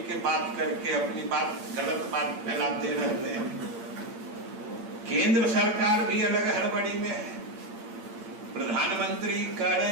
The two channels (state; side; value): late; left; 8.8 ms